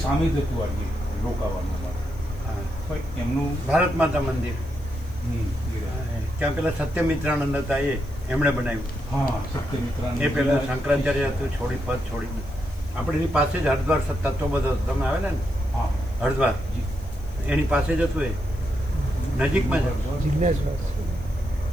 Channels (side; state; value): left; noise; hiss, 26 dB below the sound